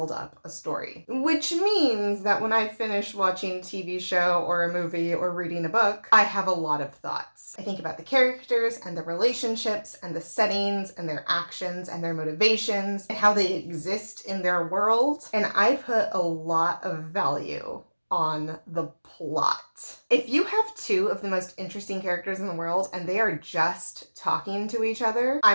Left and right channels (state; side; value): inverted; both; correlation -1.00